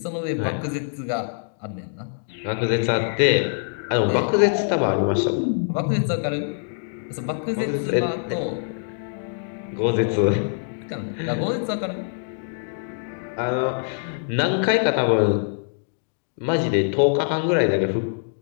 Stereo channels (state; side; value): silent; right; digital silence